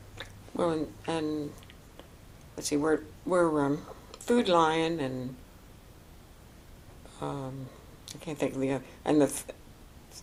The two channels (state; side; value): identical; both; correlation 1.00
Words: Well, and let's see, we're Food Lion and I can't think of the other, and the